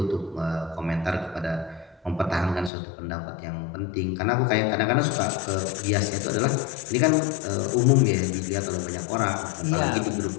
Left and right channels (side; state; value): right; drops out; at 2.7 s